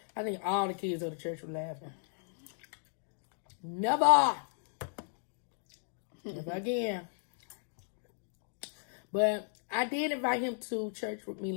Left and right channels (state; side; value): silent; right; digital silence